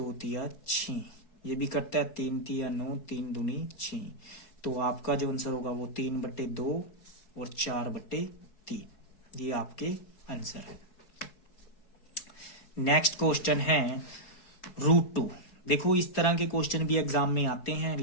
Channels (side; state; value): right; late; 4.3 ms